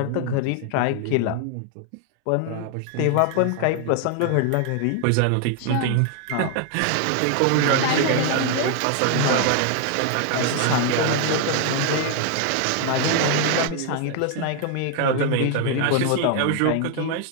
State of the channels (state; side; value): different; both; correlation 0.00